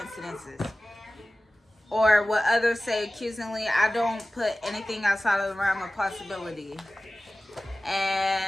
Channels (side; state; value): both; normal; correlation 0.97